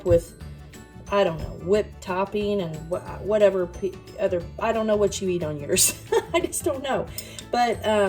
with, I don't know, whipped topping and whatever other, I don't know what you eat on yours. I just don't know. But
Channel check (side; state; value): both; identical; correlation 1.00